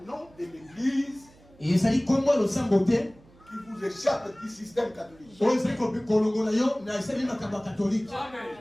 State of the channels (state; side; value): noise; right; hum, 27 dB below the sound